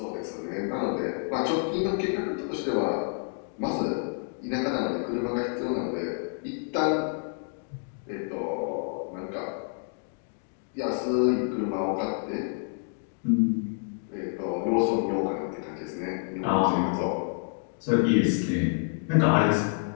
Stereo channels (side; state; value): right; silent; 56 dB below the other